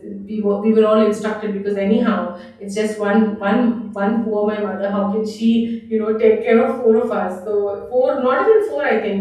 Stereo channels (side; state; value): both; identical; correlation 1.00